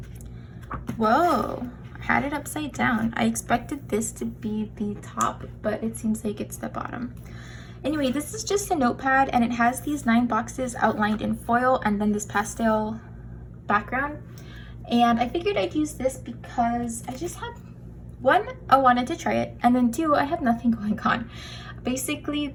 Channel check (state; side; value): identical; both; correlation 1.00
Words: Whoa, had it upside down. I expected this to be the top, but it seems like it's the bottom. Anyway, this is just a notepad, and it has these 9 boxes outlined in foil and then this pastel background. And I figured I'd use this because I just had, one, I wanted to try it, and then two, I have nothing going on.